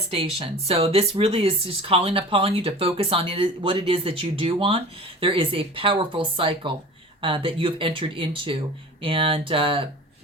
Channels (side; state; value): both; normal; correlation 0.39